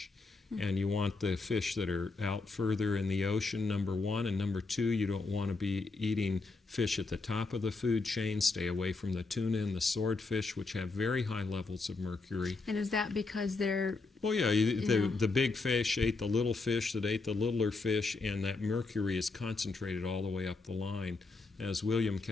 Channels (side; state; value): right; quieter; 3.7 dB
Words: And you want the fish that are out further in the ocean, number one. And number two, you don't want to be eating fish at the top of the food chain. Stay away from the tuna and the swordfish, which have very high levels of mercury. And is that because they're... Well, yeah, the big fish ate the little fish that ate the littler fish, and that mercury is concentrated all the way up the line. As William